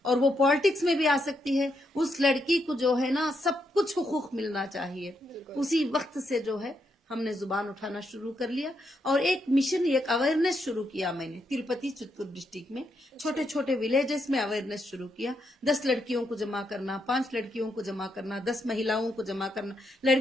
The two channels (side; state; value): both; normal; correlation 0.80